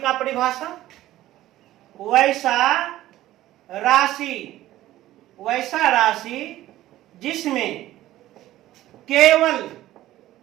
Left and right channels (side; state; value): left; quieter; 14.9 dB